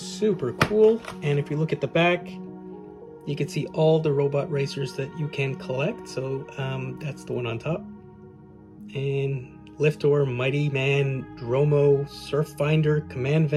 cool. And if you look at the back, you can see all the robot racers that you can collect. So that's the one on top. And Liftor, Mighty Man, Dromo, Surffinder, Command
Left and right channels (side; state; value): both; identical; correlation 1.00